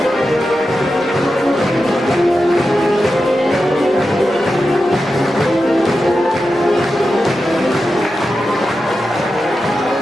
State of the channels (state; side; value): normal; both; correlation 0.90